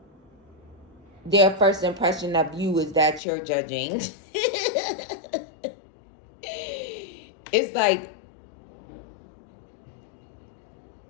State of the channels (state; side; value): drops out; right; at 3.2 s